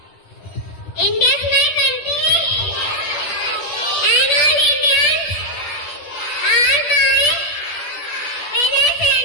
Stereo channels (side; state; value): right; late; 10 ms